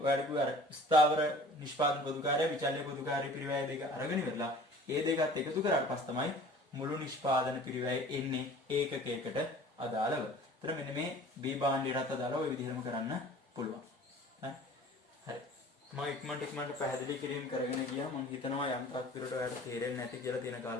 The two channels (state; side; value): normal; both; correlation 0.46